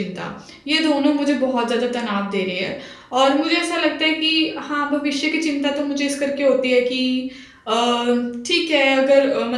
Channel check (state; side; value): identical; both; correlation 1.00